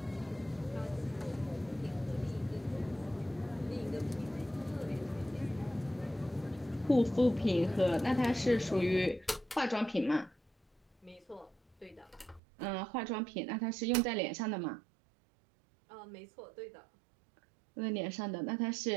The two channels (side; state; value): left; drops out; at 12.4 s